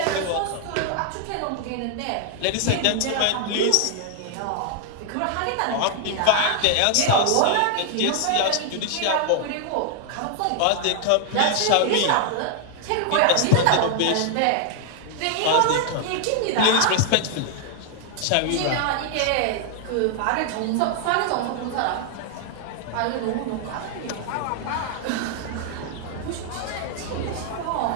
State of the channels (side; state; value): both; different; correlation 0.00